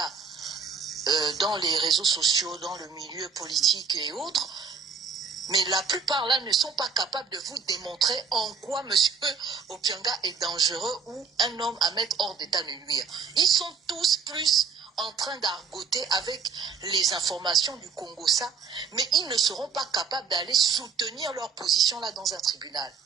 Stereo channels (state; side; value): quieter; left; 5.7 dB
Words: dans les réseaux sociaux, dans le milieu politique et autres, mais la plupart là ne sont pas capables de vous démontrer en quoi M. Opianga est dangereux ou un homme à mettre hors d'état de nuire. Ils sont tous plus en train d'argoter avec les informations du Congossa, mais ils ne seront pas capables d'aller soutenir leur position là dans un tribunal.